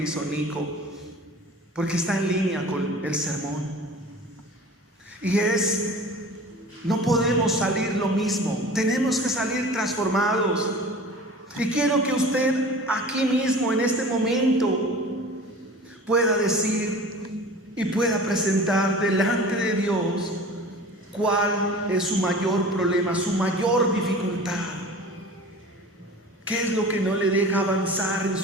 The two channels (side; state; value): both; normal; correlation 0.40